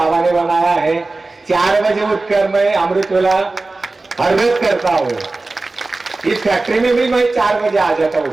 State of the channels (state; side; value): quieter; left; 3.3 dB